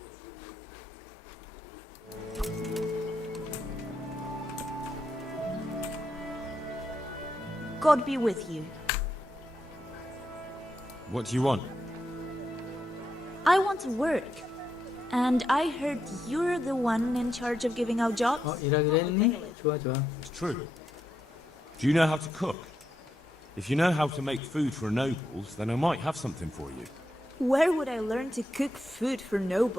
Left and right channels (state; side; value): normal; both; correlation 0.82